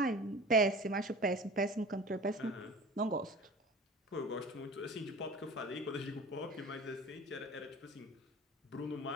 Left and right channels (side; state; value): both; normal; correlation 0.39